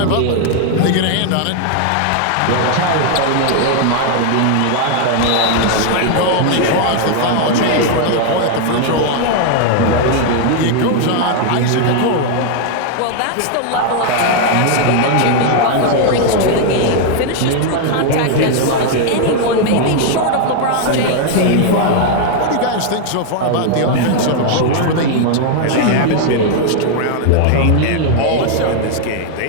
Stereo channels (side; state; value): both; different; correlation 0.00